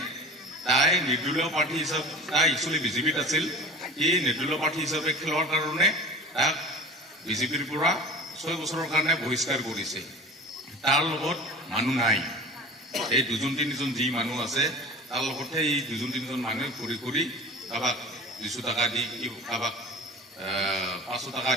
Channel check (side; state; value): both; normal; correlation 0.36